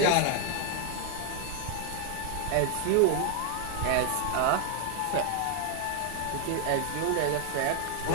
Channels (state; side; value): different; both; correlation 0.00